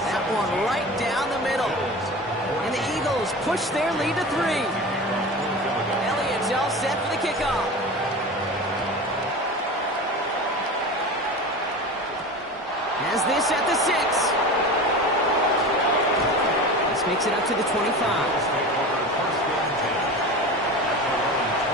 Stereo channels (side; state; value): both; normal; correlation 0.31